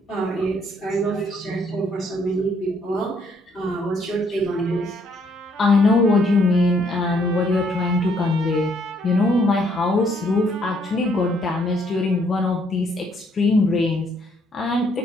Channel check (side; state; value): both; normal; correlation 0.68